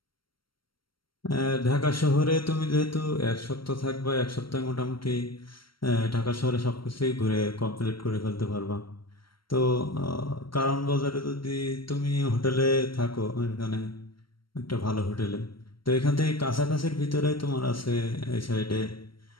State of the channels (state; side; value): late; right; 0.74 ms